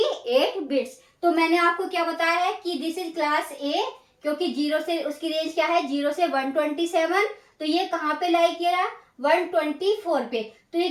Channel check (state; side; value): identical; both; correlation 1.00